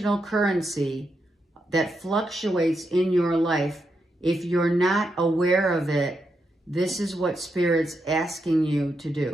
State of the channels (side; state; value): both; normal; correlation 0.83